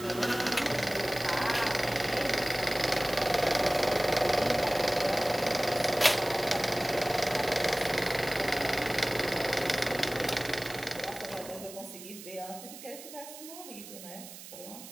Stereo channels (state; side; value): noise; right; hiss, 14 dB below the sound